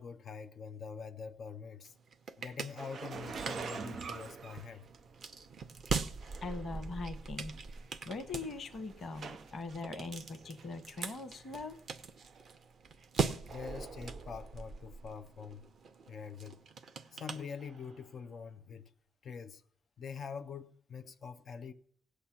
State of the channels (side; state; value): both; normal; correlation 0.70